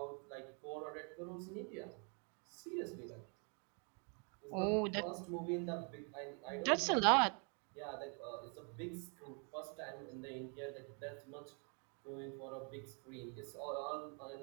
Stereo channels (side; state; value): left; quieter; 38.3 dB